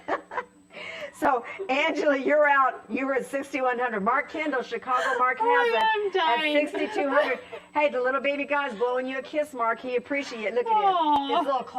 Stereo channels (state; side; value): identical; both; correlation 1.00